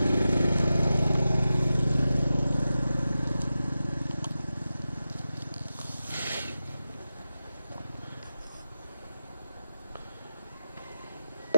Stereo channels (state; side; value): inverted; both; correlation -0.93